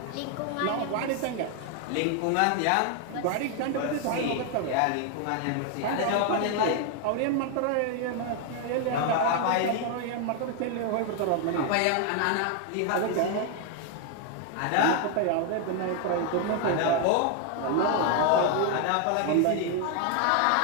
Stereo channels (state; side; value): different; both; correlation 0.00